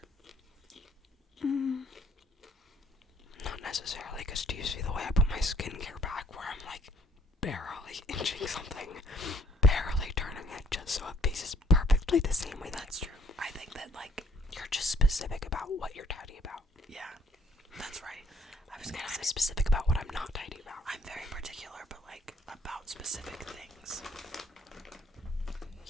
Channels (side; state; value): both; normal; correlation 0.64